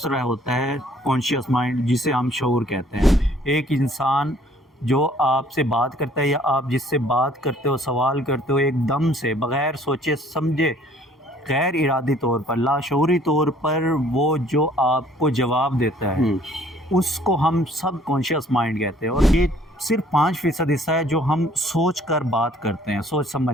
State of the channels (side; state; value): both; normal; correlation 0.58